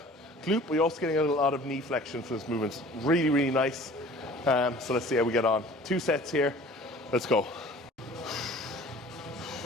glute, but you're also getting a lot of knee flexion for this movement. Really, really nice. So let's see how we get on. 2 sets here. Let's go.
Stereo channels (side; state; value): both; normal; correlation 0.47